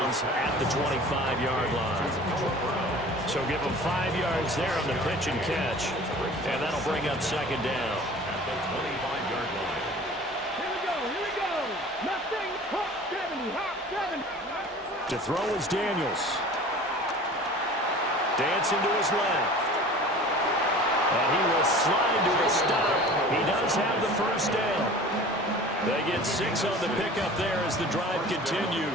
at the 25-yard line. So give him 5 yards there on the pitch and catch. And that'll bring up 2nd down. At the 25-yard line. Here we go. Nothing. Hop 70. To throw is Daniels. Dancing to his left. And he will slide to a stop. He does have the 1st down. They get 6 on the pickup there as the drive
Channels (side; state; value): both; normal; correlation 0.42